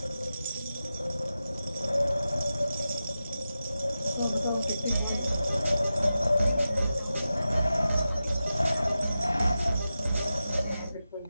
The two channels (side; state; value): both; inverted; correlation -0.92